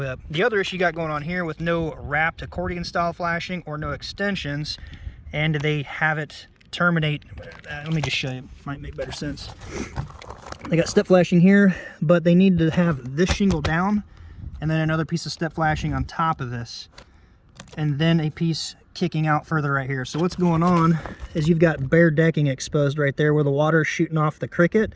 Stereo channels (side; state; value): both; identical; correlation 1.00